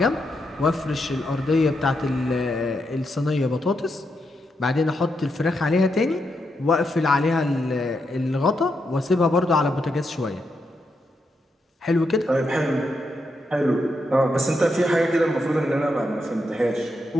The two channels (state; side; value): normal; both; correlation 0.83